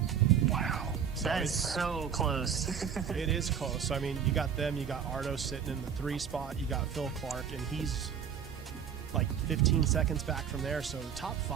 Wow. So That is so close. it is close. I mean, you got them, you got Ardo sitting in the 3 spot, you got Phil Clark, and he's like 15 seconds back from there. So the top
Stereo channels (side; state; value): left; quieter; 7.9 dB